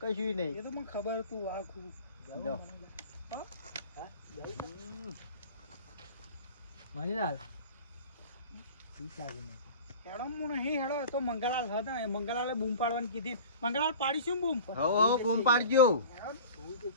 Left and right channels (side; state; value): both; inverted; correlation -0.39